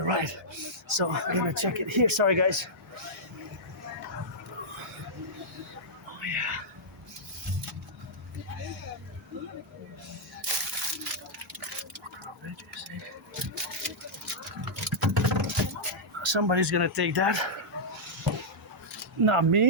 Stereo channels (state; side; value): normal; both; correlation -0.10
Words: right. So I'm gonna check it here. Sorry guys. Oh yeah. Somebody's gonna take that. Not